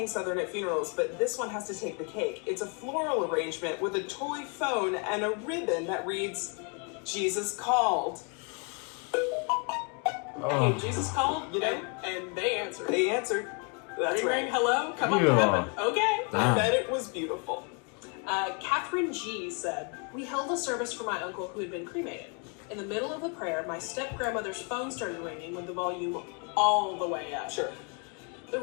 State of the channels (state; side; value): quieter; right; 36.4 dB